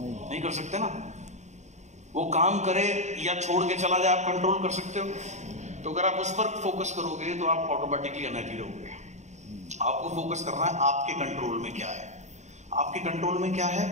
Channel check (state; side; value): late; left; 0.34 ms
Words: नहीं कर सकते ना। वो काम करे या छोड़ के चला जाए आप कंट्रोल कर सकते हो? तो अगर आप उस पर फोकस करोगे तो आप ऑटोमेटिकली अनहैप्पी रहोगे। आपको फोकस करना है आपके कंट्रोल में क्या है। आपके कंट्रोल में क्या है?